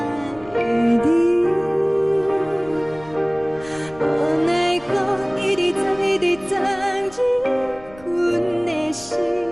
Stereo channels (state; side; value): noise; left; rumble, 22 dB below the sound